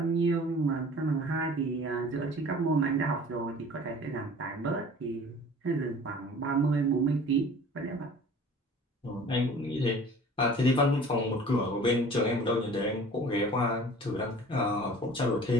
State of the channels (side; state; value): both; normal; correlation 0.45